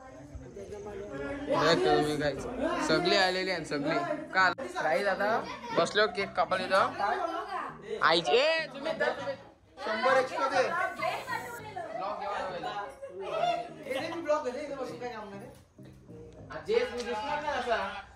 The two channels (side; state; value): both; identical; correlation 1.00